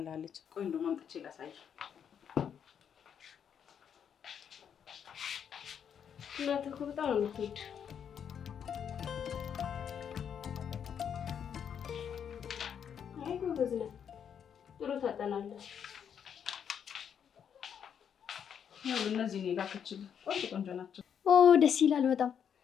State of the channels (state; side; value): quieter; right; 8.1 dB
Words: ቆይ እንደውም አምጥቼ ላሳይ። እናት እኮ በጣም ነው የምትወድ። አይ ጎበዝ ነህ፣ ጥሩ ታጠናለህ። እነዚህ እኔ ላከችልህ ቆንጆ ቆንጆ ናቸው። ኦ ደስ ይላል በጣም።